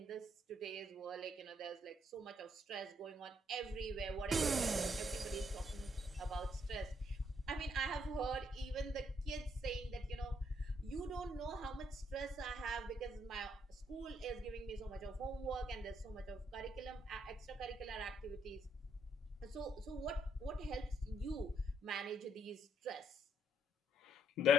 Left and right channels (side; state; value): both; normal; correlation 0.71